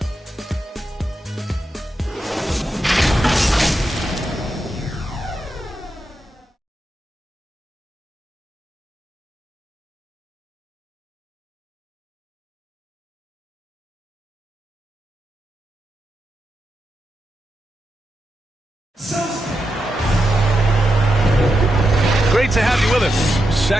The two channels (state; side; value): normal; both; correlation 0.86